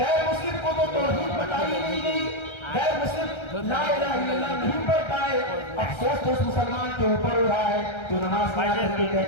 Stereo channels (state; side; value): late; right; 1.3 ms